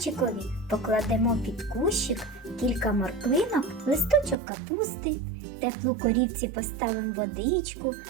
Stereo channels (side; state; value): left; drops out; at 4.4 s